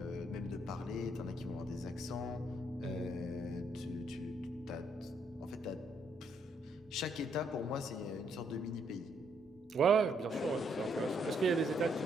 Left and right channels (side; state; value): both; normal; correlation 0.72